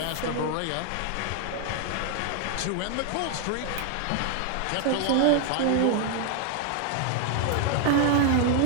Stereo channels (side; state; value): both; different; correlation 0.01